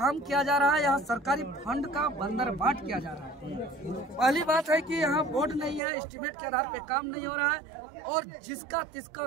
किया जा रहा है। यहाँ सरकारी फंड का बंदरबाट किया जा रहा है। पहली बात है कि यहाँ बोर्ड नहीं है, एस्टीमेट के आधार पे काम नहीं हो रहा है और जिसका तिसका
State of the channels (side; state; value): left; drops out; at 5.8 s